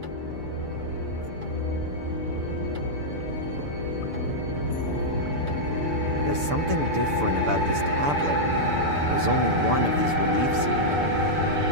There's something different about this tablet. There's only one of these reliefs here.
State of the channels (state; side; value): late; left; 6.9 ms